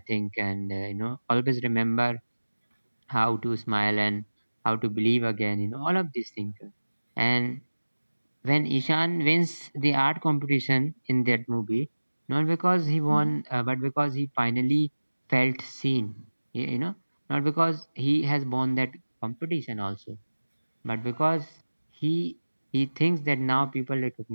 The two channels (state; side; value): inverted; both; correlation -1.00